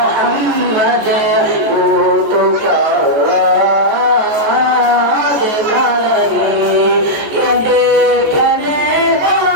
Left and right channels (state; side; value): late; left; 14 ms